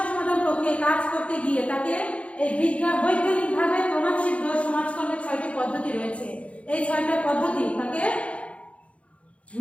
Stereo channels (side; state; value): right; late; 0.063 ms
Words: সমাধান প্রক্রিয়ায় কাজ করতে গিয়ে তাকে এই বৈজ্ঞানিকভাবে প্রমাণসিদ্ধ সমাজকর্মের 6টি পদ্ধতি রয়েছে। এই 6টা পদ্ধতি তাকে